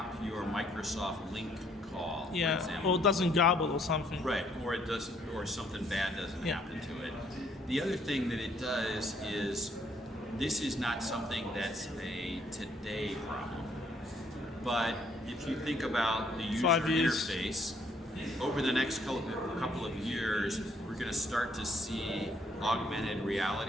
your Microsoft Link call, for example. Or it doesn't garble or something. Right, or it doesn't, or something bad doesn't happen to it. The other thing that it does is this is not something that's a today problem, but if you think about the user interface, over the next couple of years, we're going to start to see augmented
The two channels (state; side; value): normal; both; correlation 0.66